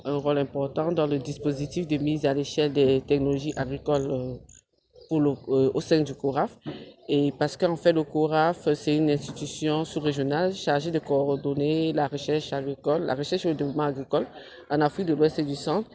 un rôle important dans le dispositif de mise à l'échelle des technologies agricoles au sein du CORAF. Et parce qu'en fait, le CORAF, c'est une institution sous-régionale chargée de coordonner la recherche agricole, la recherche et le développement agricole en Afrique de l'Ouest et du Centre.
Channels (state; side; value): identical; both; correlation 1.00